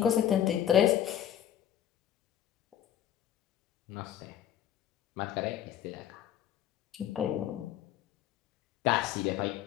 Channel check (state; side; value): quieter; right; 10.6 dB